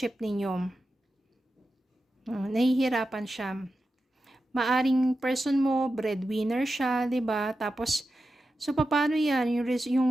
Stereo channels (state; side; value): normal; both; correlation 0.91